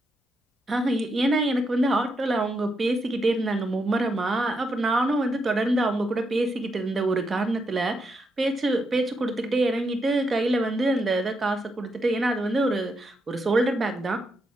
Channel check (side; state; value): both; normal; correlation 0.81